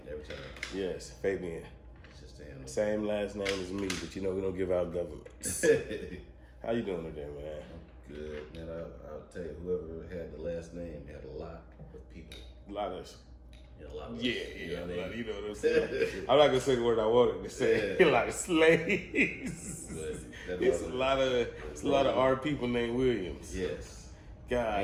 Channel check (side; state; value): both; identical; correlation 1.00